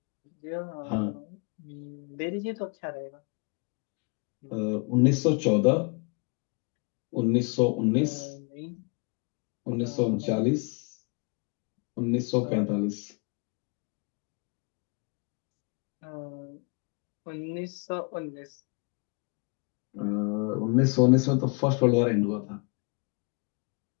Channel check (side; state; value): right; quieter; 33.4 dB